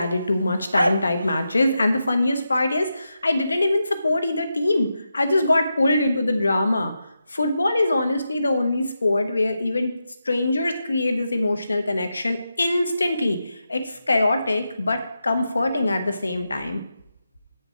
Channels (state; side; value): inverted; both; correlation -0.87